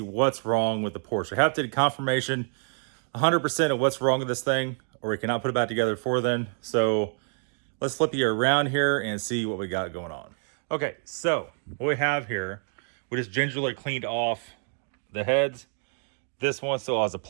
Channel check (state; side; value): silent; left; 55 dB below the other